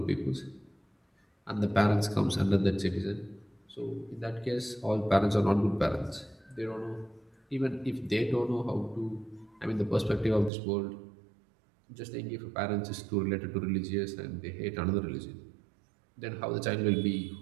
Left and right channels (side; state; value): left; drops out; at 10.5 s